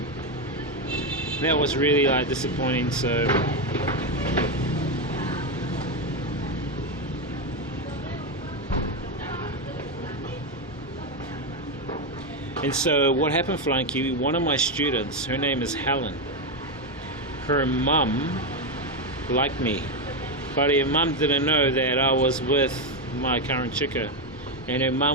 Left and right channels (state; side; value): normal; both; correlation 0.08